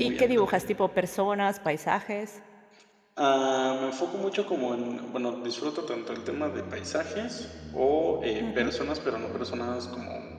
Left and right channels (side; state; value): both; identical; correlation 1.00